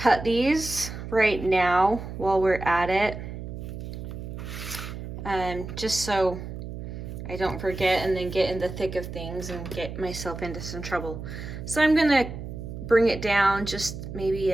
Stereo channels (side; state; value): right; noise; hum, 9 dB below the sound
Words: these right now while we're at it, just so I don't forget and then get in the thick of things and get myself into some trouble. So I'm going to bring it down just maybe